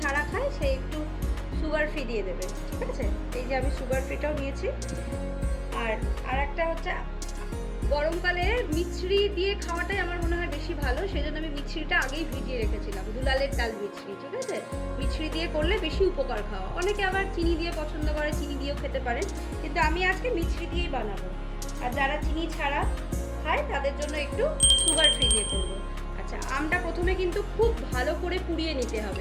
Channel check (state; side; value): identical; both; correlation 1.00